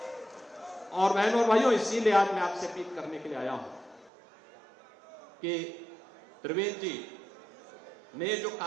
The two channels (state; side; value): drops out; left; at 4.1 s